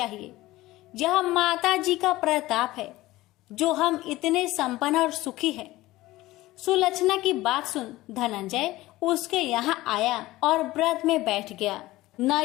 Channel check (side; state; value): right; quieter; 17.9 dB